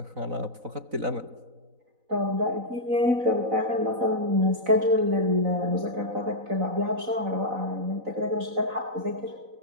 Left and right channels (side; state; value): left; late; 4.0 ms